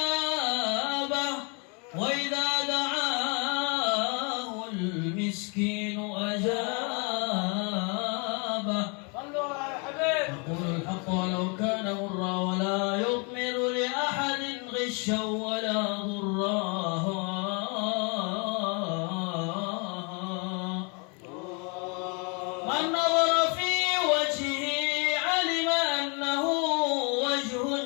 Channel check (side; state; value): right; quieter; 34.1 dB